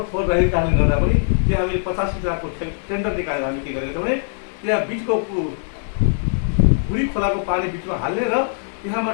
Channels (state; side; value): silent; right; 65 dB below the other